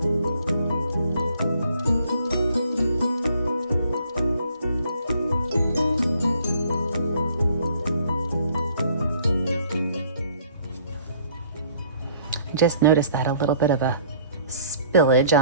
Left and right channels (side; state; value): both; inverted; correlation -0.59